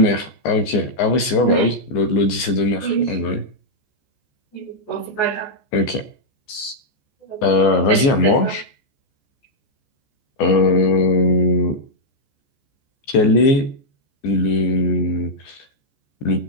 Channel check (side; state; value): right; late; 14 ms